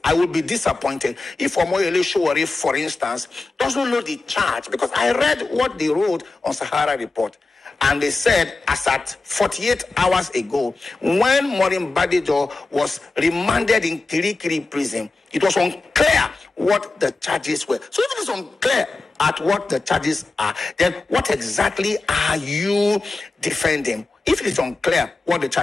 I will be disappointed if Omoyele Sowore, for instance, doesn't know the charge, because I read what they wrote on Sahara Report. And they said, as at 48 hours ago, when Maureen Badejo was remanded in Kirikiri prison, it was unclear what the charges were. So if it is unclear at what the charges are, then what exactly are you defending? If it is unclear what the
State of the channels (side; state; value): right; quieter; 3.5 dB